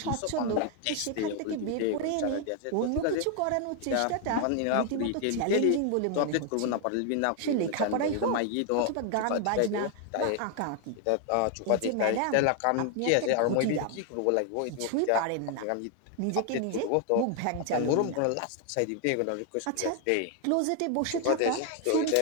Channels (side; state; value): both; different; correlation 0.00